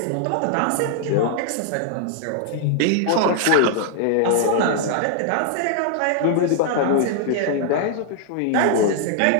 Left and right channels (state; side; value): different; both; correlation -0.01